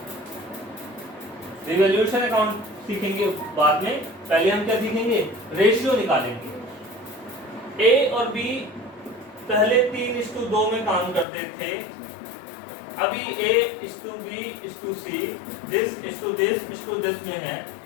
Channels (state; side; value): drops out; right; at 11.2 s